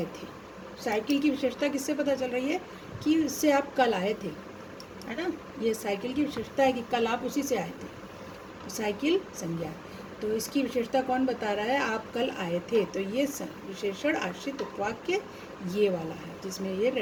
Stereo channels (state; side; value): identical; both; correlation 1.00